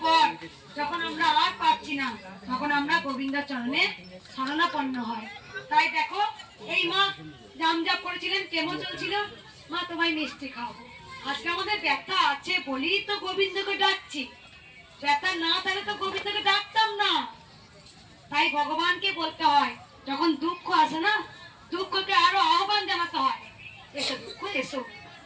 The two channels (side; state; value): both; identical; correlation 1.00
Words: পর যখন আমরা আর পাচ্ছি না, তখন আমরা গোবিন্দ চরণে শরণাপন্ন হয়। তাই দেখো, এই মা জামজাপ করেছিলেন, কেমন চলছিল, মা তোমায় মিষ্টি খাওয়াবো। আজকে আমাদের ব্যথা আছে বলেই তো গোবিন্দকে ডাকছি। ব্যথা না থাকলে তো গোবিন্দকে ডাকতাম না। তাই ভগবানকে বলতে হয়, যখন দুঃখ আসে না, দুঃখকে আরো আহ্বান জানাতে হয়, এসো দুঃখ এসো,